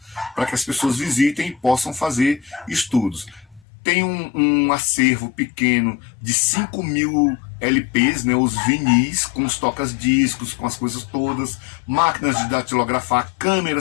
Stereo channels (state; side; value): drops out; right; at 3.6 s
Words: para que as pessoas visitem e possam fazer estudos. Tem um acervo pequeno de 5.000 LPs, né, os vinis, com os tocas-discos, com as coisas todas, máquinas de datilografar,